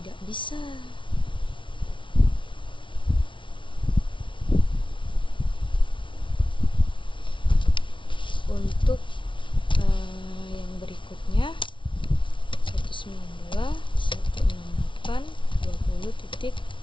bisa. Untuk yang berikutnya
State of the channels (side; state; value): right; late; 0.24 ms